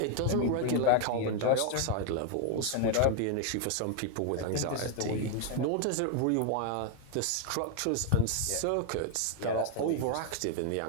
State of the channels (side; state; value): both; different; correlation 0.01